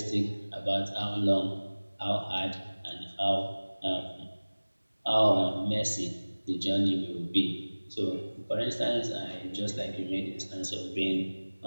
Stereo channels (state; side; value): inverted; both; correlation -1.00